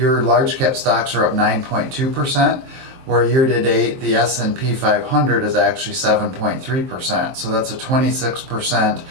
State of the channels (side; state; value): left; late; 23 ms